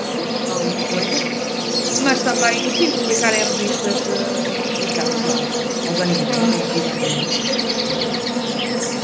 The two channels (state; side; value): identical; both; correlation 1.00